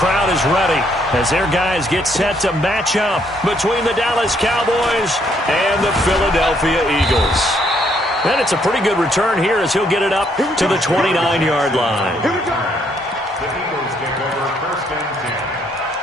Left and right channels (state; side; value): normal; both; correlation 0.70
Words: is ready as their guys get set to match up between the Dallas Cowboys and the Philadelphia Eagles. And it's a pretty good return here as he'll get it up to the 29-yard line. The Eagles take over 1st and 10